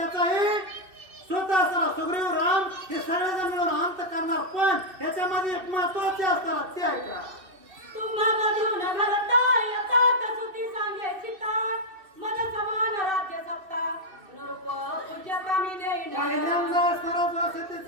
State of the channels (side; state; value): left; late; 2.6 ms